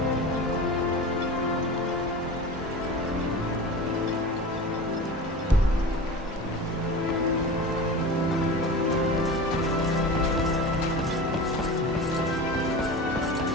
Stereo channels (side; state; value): both; normal; correlation 0.32